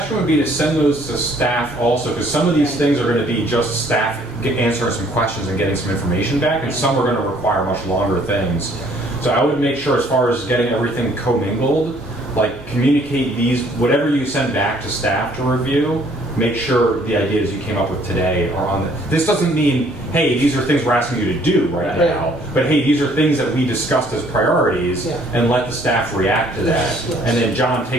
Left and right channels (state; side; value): normal; both; correlation 0.61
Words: would be to send those to staff also, because some of these things are going to be just staff answering some questions and getting some information back, and some are going to require much longer things. So I would make sure, as far as getting everything commingled, like communicate these, whatever you send back to staff to review, make sure the ideas you came up with today are on the. This doesn't mean, hey, these are things we're asking you to do right now, but hey, these are things that we discussed as priorities, and let the staff react to that. And then John,